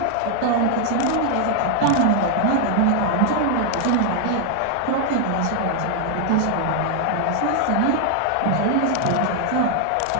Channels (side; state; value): both; different; correlation 0.00